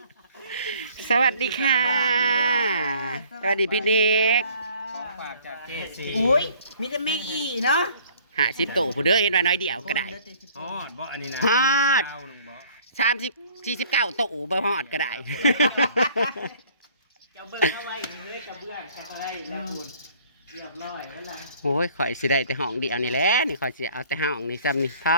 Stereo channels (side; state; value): both; inverted; correlation -0.55